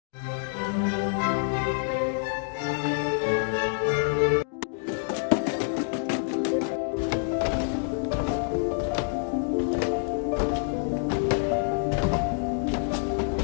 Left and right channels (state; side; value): silent; right; digital silence